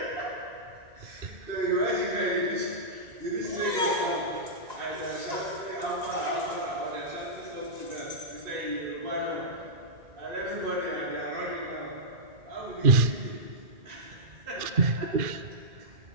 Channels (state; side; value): late; left; 1.9 ms